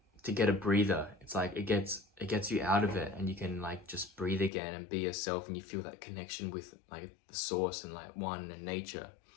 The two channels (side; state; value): right; drops out; at 4.5 s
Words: get a breather. It's like it gets you out of it, and you can like just breathe again and be yourself, and you feel that connection with like the source and like one and nature.